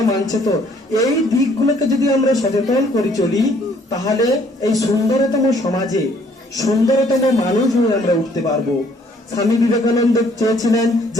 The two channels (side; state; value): both; normal; correlation 0.62